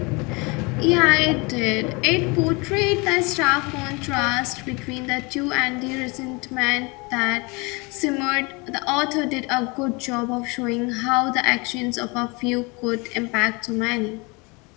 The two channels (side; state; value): right; quieter; 28.0 dB